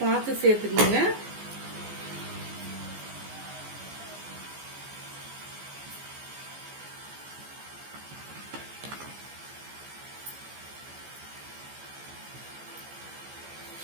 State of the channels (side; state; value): left; late; 14 ms